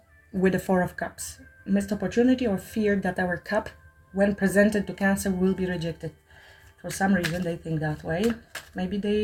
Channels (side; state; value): both; identical; correlation 1.00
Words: with the 4 of Cups. Missed opportunity or fear that our cup, when presented to Cancer, will be rejected. For some reason they think that way. Maybe